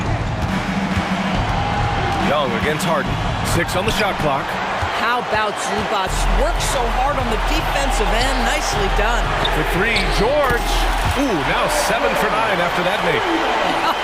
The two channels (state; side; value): identical; both; correlation 1.00